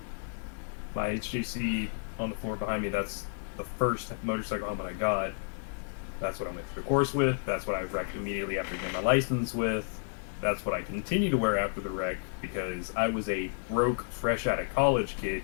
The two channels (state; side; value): silent; right; digital silence